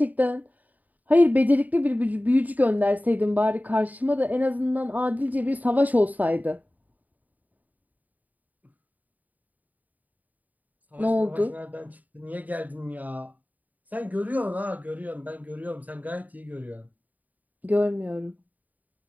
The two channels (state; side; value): late; left; 0.078 ms